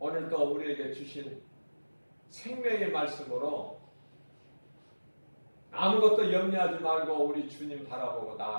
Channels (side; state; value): both; inverted; correlation -1.00